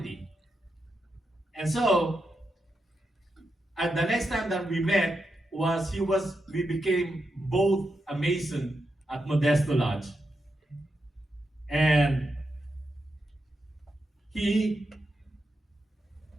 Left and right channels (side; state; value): both; normal; correlation 0.86